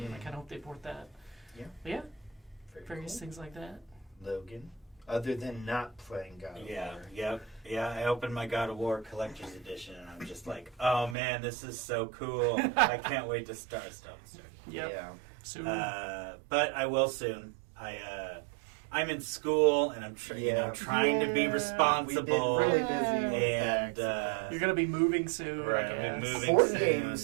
I kind of hope they port that. Yeah. But yeah, Very various cool. things like that. Logan, other than not playing God of War. Yeah. I opened my God of War Collector's Edition, and I'm just like, oh man, this is so cool. I can't wait to start. Yep. Yeah. Soon. But I will soon. I'm in school, and I'm trying to be responsible. We've been really busy. And You're going to be moving soon. Right, I I'll be guess. moving Board soon,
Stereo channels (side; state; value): left; drops out; at 11.2 s